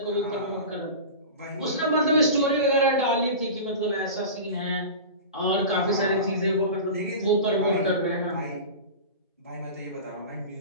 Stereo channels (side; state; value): both; inverted; correlation -0.31